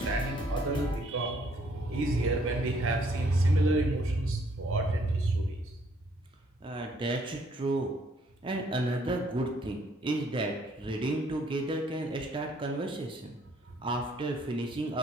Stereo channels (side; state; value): both; normal; correlation 0.65